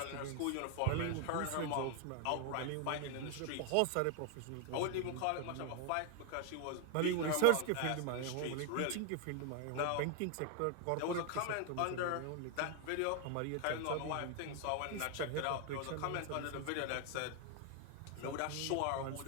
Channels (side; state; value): both; different; correlation 0.00